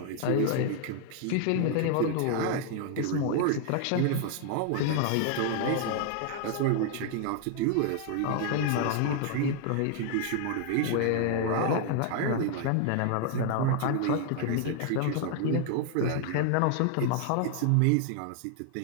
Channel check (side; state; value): both; different; correlation 0.00